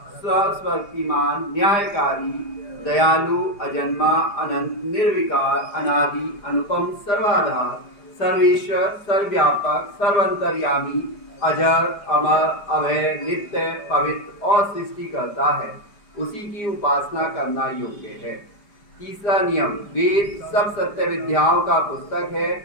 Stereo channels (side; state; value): right; late; 4.9 ms